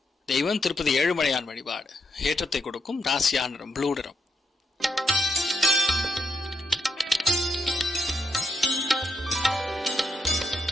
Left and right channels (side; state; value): both; normal; correlation 0.80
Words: தெய்வம் திருப்பதி ஏழுமலையான் வழிபாடு. ஏற்றத்தை கொடுக்கும். ராசியா நிறம் ப்ளூ நிறம்.